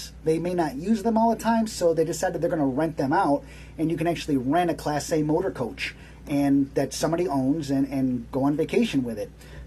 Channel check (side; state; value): both; identical; correlation 1.00